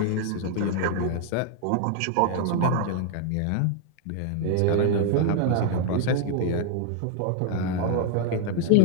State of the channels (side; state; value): both; different; correlation 0.00